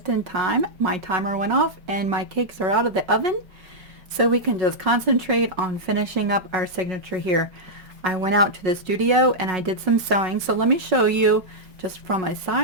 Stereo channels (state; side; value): late; left; 5.4 ms